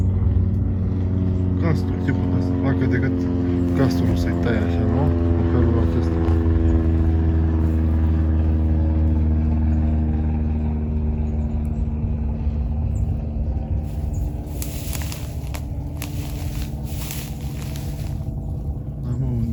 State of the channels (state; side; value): identical; both; correlation 1.00